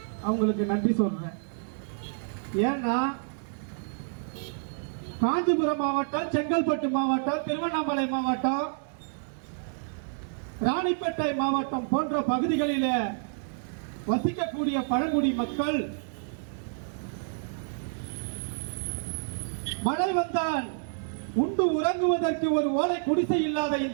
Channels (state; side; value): silent; left; digital silence